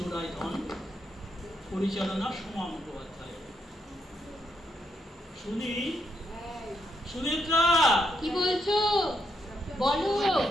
ধন, পরিচালনা সোমা মুখোপাধ্যায়। সুনেত্রা, কি বলছো? বলো।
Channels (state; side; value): normal; both; correlation 0.79